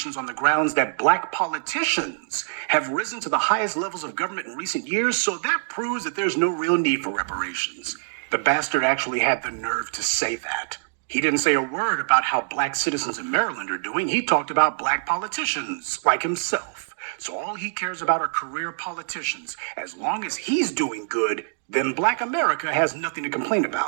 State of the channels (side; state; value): left; silent; digital silence